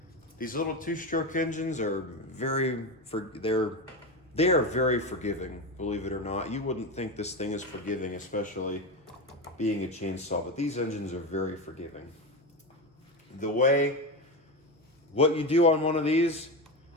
These little two-stroke engines are they are very forgiving, believe it or not. You wouldn't think this thing is forgiving, especially being a chainsaw, but these engines are very forgiving. What you do on one of these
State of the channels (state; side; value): normal; both; correlation 0.18